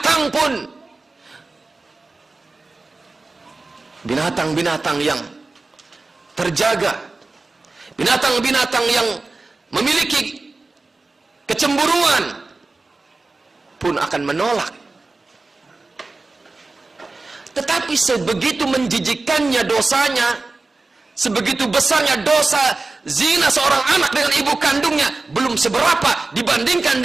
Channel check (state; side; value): quieter; left; 3.5 dB